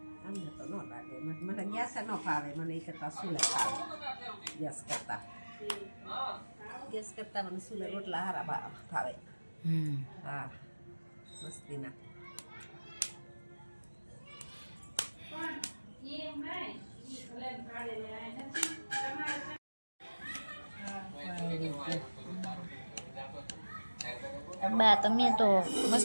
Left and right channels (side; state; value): both; inverted; correlation -1.00